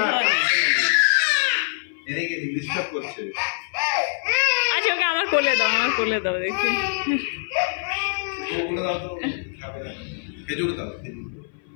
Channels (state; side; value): silent; right; 59 dB below the other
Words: আচ্ছা ওকে আমার কোলে দাও, আমার কোলে দাও দেখি।